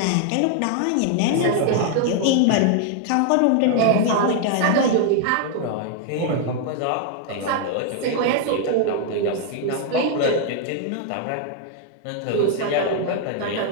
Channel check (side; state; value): both; different; correlation 0.00